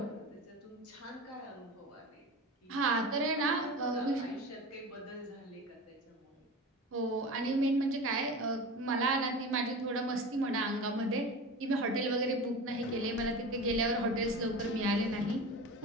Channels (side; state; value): both; normal; correlation 0.31